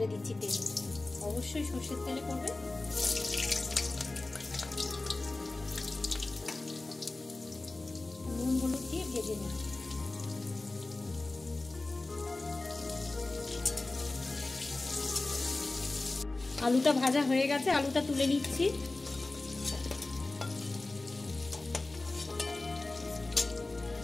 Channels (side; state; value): right; quieter; 3.1 dB